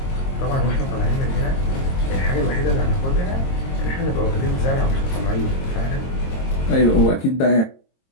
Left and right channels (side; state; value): right; late; 22 ms